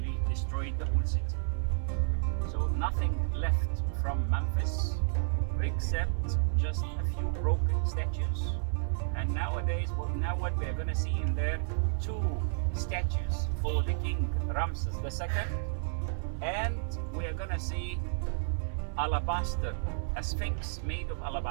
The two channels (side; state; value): left; silent; 57 dB below the other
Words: destroyed the whole city. So nothing left from Memphis except just a few broken statues. And nowadays, what we are going to see in there, 2 statues for the king Ramses the II, and we are going to see alabaster, a sphinx made of